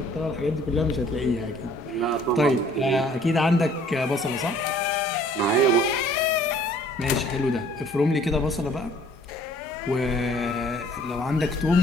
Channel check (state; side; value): normal; both; correlation 0.56